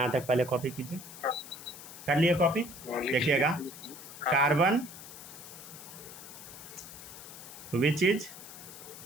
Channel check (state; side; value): noise; left; hiss, 14 dB below the sound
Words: तक पहले कॉपी कीजिए, कर लिए कॉपी। देखिएगा carbon which is